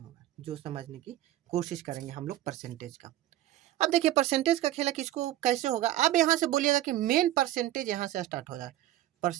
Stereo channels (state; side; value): quieter; left; 14.3 dB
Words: जो समझने की कोशिश करेंगे हम लोग परसेंटेज का। अब देखिए परसेंटेज का खेला किसको कैसे होगा। अब यहाँ से बोलिएगा कि मेन परसेंटेज यहाँ से स्टार्ट हो जाए,